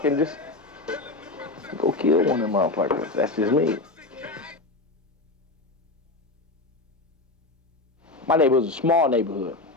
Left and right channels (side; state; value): right; quieter; 3.2 dB